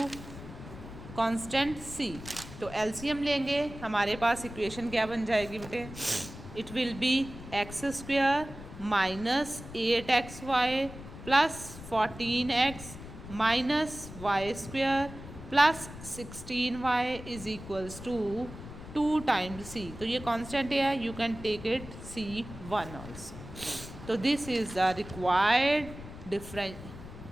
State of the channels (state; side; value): noise; left; rumble, 13 dB below the sound